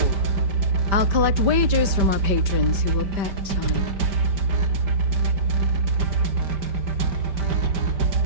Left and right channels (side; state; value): left; late; 5.1 ms